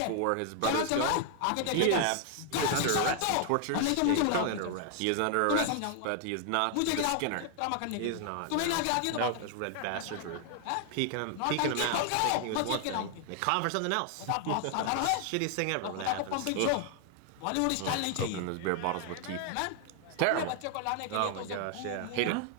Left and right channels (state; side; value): different; both; correlation 0.00